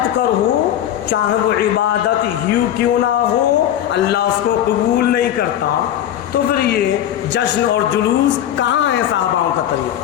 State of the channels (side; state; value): right; quieter; 11.2 dB